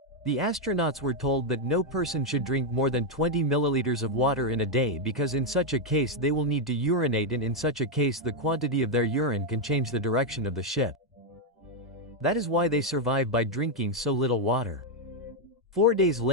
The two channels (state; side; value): normal; both; correlation 0.01